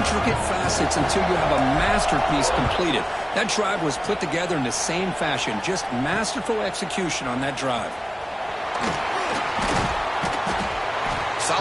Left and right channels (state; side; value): identical; both; correlation 1.00